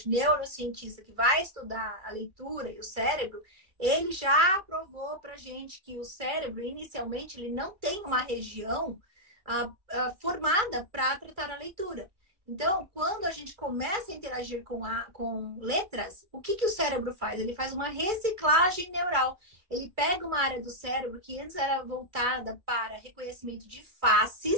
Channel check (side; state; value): left; late; 2.4 ms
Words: neurocientista, que vai estudar a leitura e o cérebro, ele já provou pra gente que o cérebro, inicialmente, ele não tem uma região formada para tratar a leitura. Então, quando a gente começa a interagir com letras, o que o cérebro faz? Ele faz uma reciclagem neural. Ele pega uma área do cérebro que antes era voltada para reconhecimento de